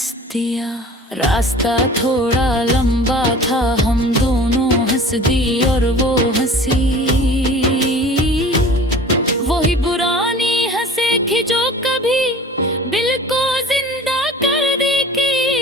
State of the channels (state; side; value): normal; both; correlation 0.42